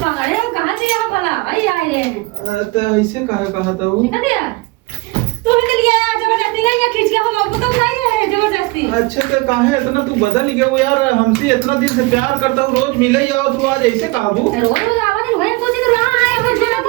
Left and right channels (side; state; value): left; quieter; 23.4 dB